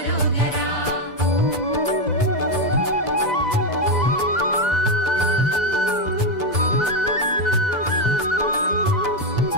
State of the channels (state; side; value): late; right; 2.0 ms